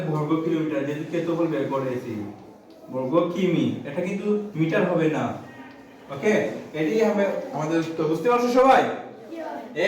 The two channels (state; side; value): identical; both; correlation 1.00